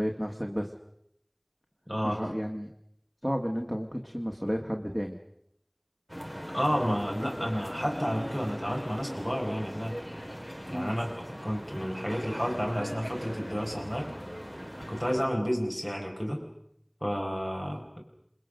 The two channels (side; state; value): both; identical; correlation 1.00